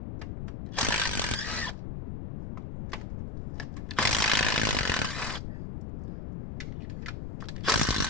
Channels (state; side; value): noise; left; rumble, 7 dB below the sound